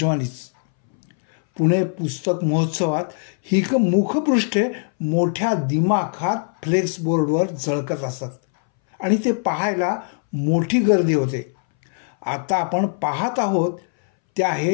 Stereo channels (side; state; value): right; silent; 62 dB below the other